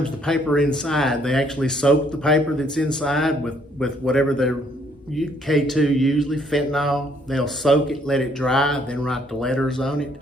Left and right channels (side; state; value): both; normal; correlation 0.66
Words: the paper inside, they actually soak the paper that's inside with whatever their K2, usually fentanyl. They'll soak it, let it dry, then write the letters on